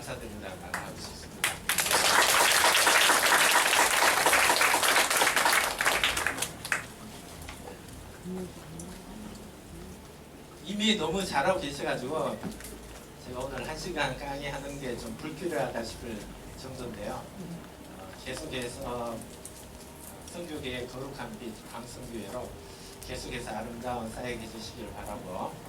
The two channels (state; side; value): identical; both; correlation 1.00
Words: 말 하고 싶습니다. 이미 너무 잘하고 계셔가지고 제가 오늘 1시간 강의하는 게 좀 불필요하다 싶을 정도인데요. 계속해서 선교계의 거룩한 빛 광성교회로 계속해서 아름다운 사역해 주시기를 바라고